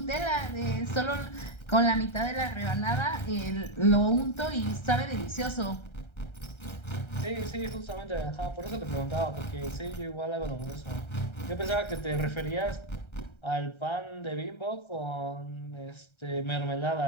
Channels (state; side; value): late; right; 1.3 ms